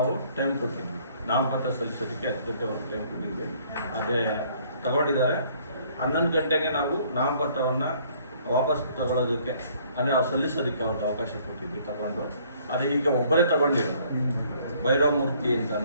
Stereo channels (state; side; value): inverted; both; correlation -0.60